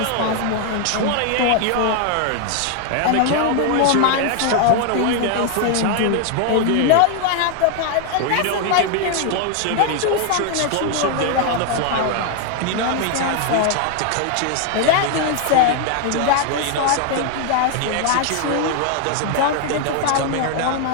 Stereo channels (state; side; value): different; both; correlation 0.00